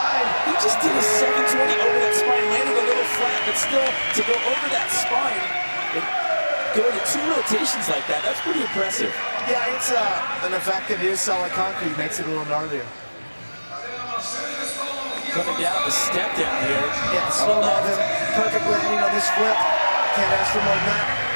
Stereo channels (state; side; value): inverted; both; correlation -1.00